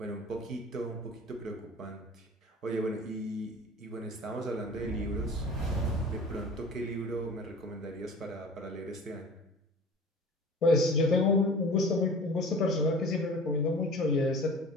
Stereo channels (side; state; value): both; normal; correlation 0.41